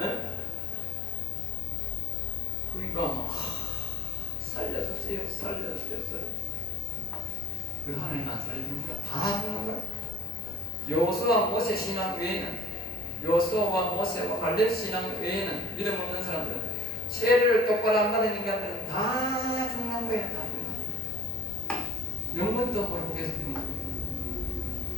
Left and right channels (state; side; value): normal; both; correlation 0.37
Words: 그러니까 살려주세요. 그 하나님 안 살려주는 거야. 다 죽는 거야. 여호수아 모세 신앙 외에는, 여호수아와 모세와 갈렙 신앙 외에는, 믿음 없는 사람들은, 세례를 똑바로 안 받은 인간들은 다 죽는 거야. 다 죽는 거야. 영문도 모르고 계속 죽는 거야.